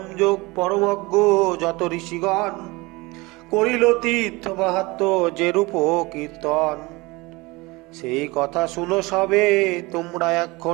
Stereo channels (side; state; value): left; quieter; 23.5 dB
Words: যোগ পরমজ্ঞ যত ঋষিগণ, করিল তীর্থ মাহাত্ম্য যে রূপ কীর্তন। সেই কথা শুনো সবে তোমরা